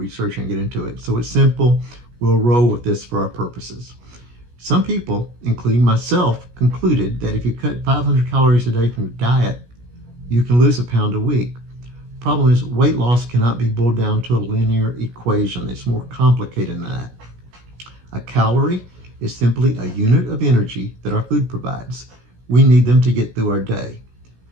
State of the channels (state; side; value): late; left; 17 ms